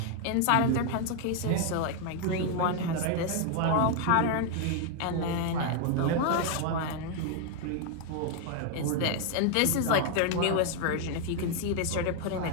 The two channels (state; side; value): different; both; correlation 0.00